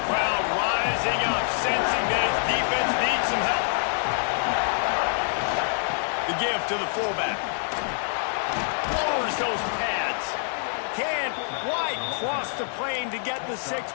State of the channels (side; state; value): right; silent; digital silence